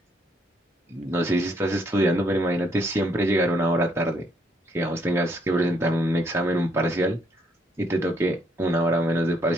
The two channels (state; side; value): normal; both; correlation 0.71